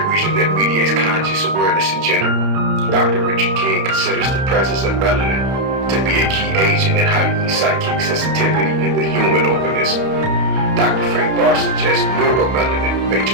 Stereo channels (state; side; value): late; left; 31 ms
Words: region that mediates conscious awareness in general. Dr. Richard King considers the presence of melanin to be a key agent in heightening psychic sensitivity in the human organism. Dr. Frank Barr suggests neuromelanin may